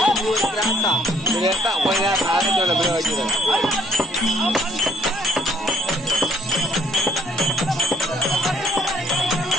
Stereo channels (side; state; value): both; normal; correlation 0.64